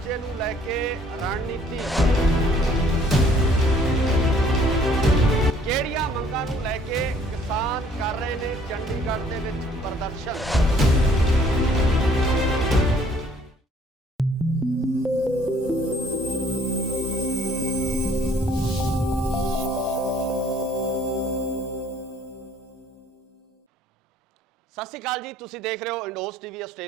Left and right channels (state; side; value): normal; both; correlation 0.59